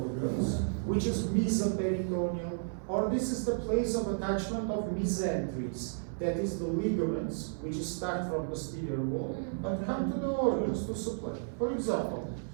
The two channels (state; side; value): silent; left; 56 dB below the other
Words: which is mesoperitoneal, or this is the place of attachment of mesenteries, that is the ligaments, which start from posterior wall and come to the organs to supply. For example,